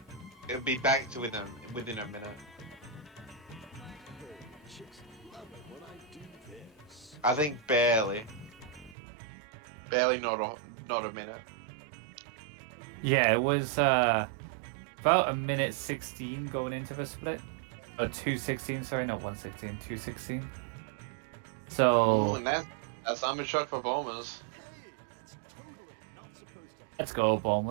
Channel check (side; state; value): left; drops out; at 9.0 s